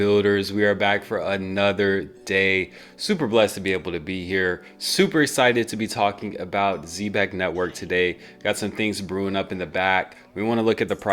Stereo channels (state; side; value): identical; both; correlation 1.00